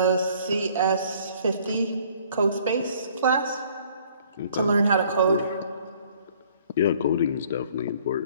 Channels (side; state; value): both; inverted; correlation -0.58